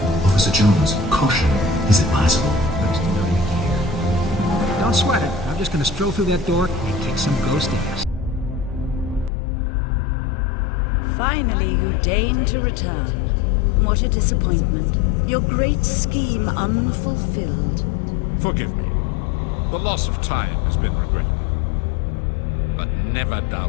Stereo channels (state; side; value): drops out; right; at 9.3 s